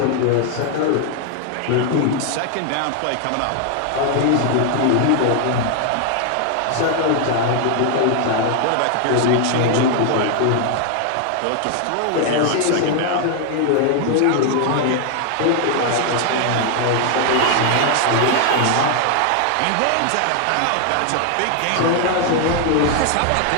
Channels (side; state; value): both; different; correlation 0.00